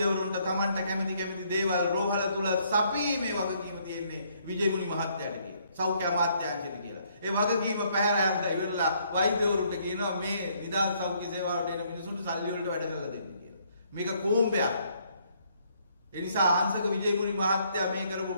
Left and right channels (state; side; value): inverted; both; correlation -0.68